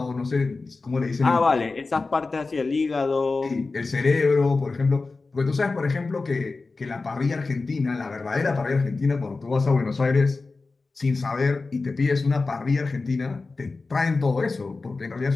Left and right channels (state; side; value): quieter; right; 3.8 dB